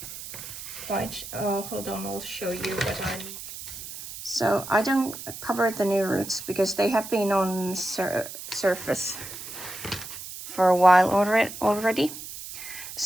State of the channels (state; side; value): noise; right; hiss, 11 dB below the sound